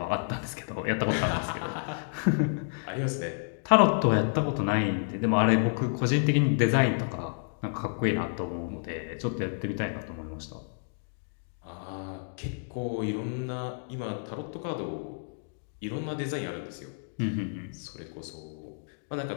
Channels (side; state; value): right; silent; digital silence